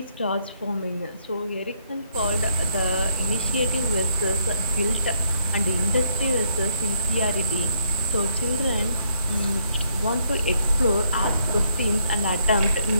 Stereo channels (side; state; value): both; inverted; correlation -0.71